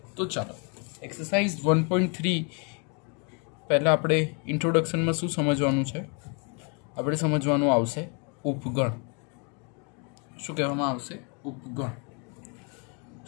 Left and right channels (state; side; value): quieter; right; 36.5 dB